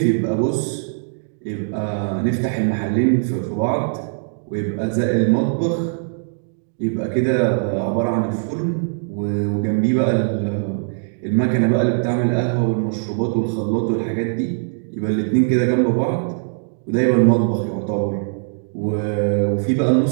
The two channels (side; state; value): left; silent; digital silence